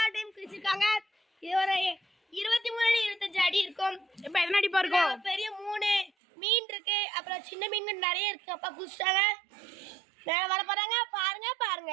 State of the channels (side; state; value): left; drops out; at 6.1 s